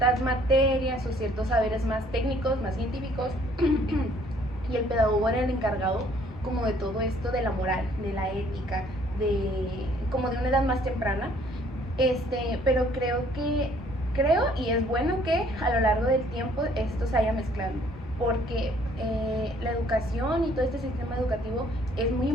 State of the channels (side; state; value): both; normal; correlation 0.60